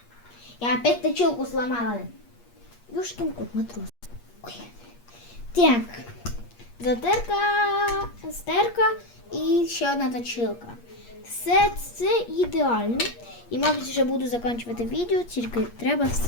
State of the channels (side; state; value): right; late; 8.5 ms